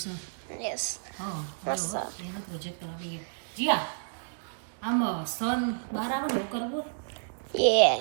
છે. યસ હા મસ્ત. એનો પ્રોજેક્ટ કરવા દઈએ. જીયા આમ સન બહાર આવે ને એવું કરવું. યે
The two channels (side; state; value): left; silent; digital silence